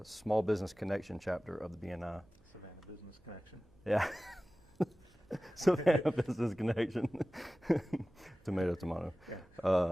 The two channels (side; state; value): right; noise; hum, 28 dB below the sound